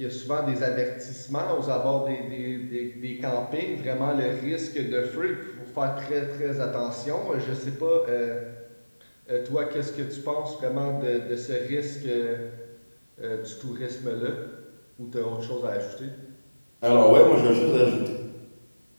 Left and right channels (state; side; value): inverted; both; correlation -1.00